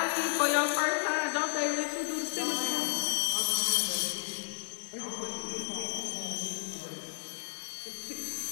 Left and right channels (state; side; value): silent; right; digital silence